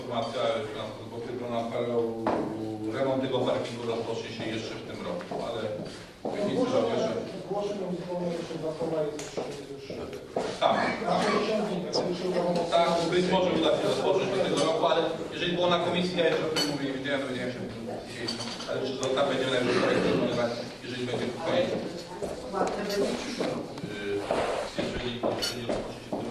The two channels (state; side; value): identical; both; correlation 1.00